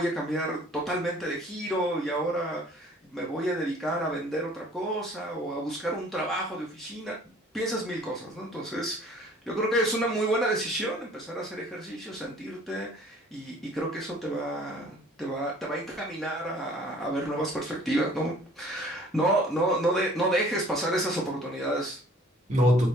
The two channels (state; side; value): normal; both; correlation 0.53